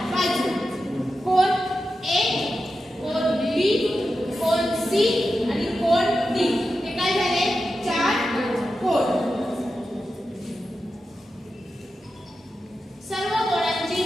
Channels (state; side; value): normal; both; correlation 0.90